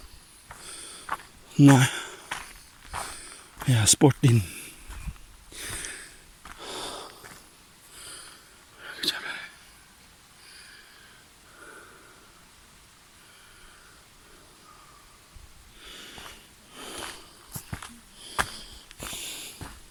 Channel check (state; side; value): identical; both; correlation 1.00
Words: Nej. Ja, sportin.